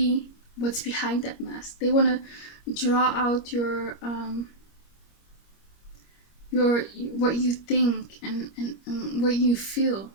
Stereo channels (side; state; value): right; late; 25 ms